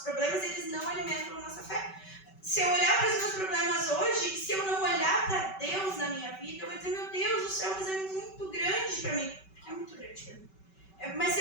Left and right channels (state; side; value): late; right; 5.2 ms